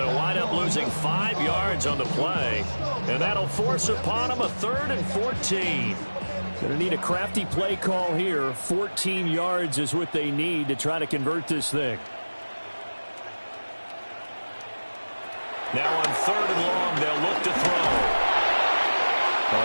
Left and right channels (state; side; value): inverted; both; correlation -1.00